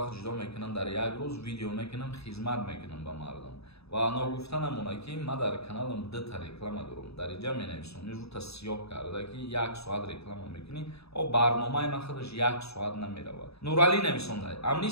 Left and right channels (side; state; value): right; late; 0.78 ms